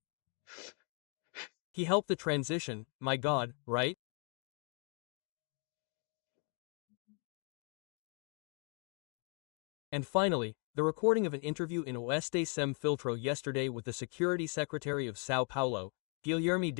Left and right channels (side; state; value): right; quieter; 39.1 dB